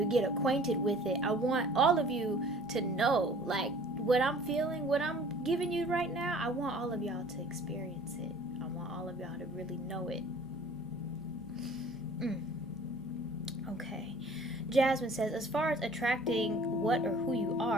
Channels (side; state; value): both; normal; correlation 0.49